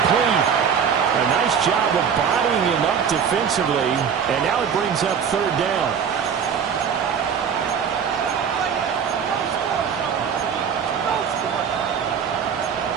A nice job of bodying him up defensively, and now it brings up 3rd down.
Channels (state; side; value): quieter; left; 7.2 dB